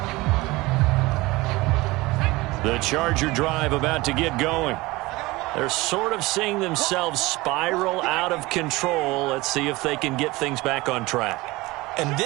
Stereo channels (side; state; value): left; quieter; 21.2 dB